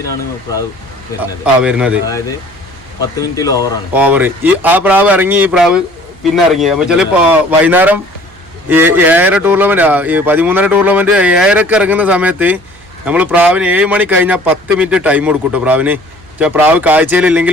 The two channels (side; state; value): right; noise; hum, 27 dB below the sound